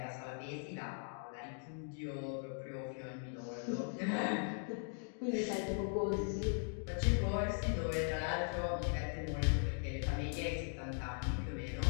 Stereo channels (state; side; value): silent; right; 51 dB below the other